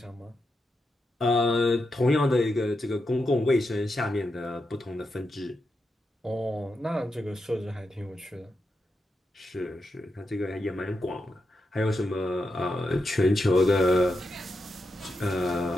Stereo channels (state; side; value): normal; both; correlation 0.86